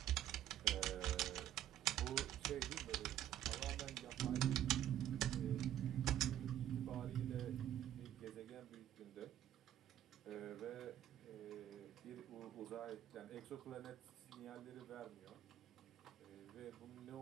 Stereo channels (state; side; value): quieter; left; 11.6 dB